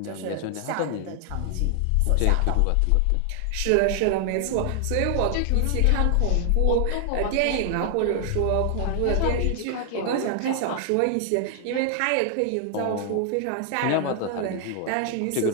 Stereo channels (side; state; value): both; different; correlation 0.00